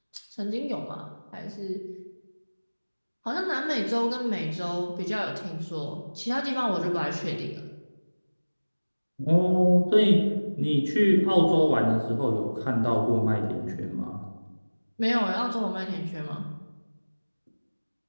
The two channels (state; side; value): inverted; both; correlation -1.00